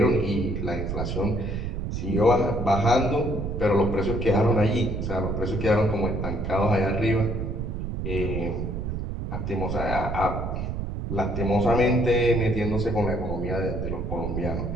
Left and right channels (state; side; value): noise; right; rumble, 3 dB below the sound